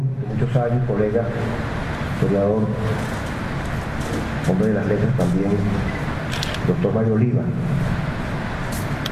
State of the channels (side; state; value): both; identical; correlation 1.00